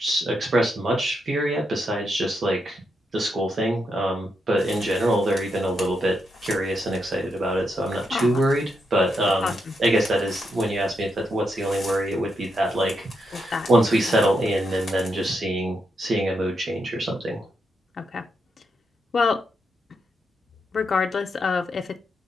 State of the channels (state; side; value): normal; both; correlation 0.82